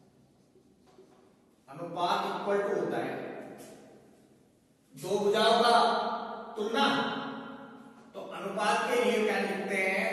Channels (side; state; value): both; identical; correlation 1.00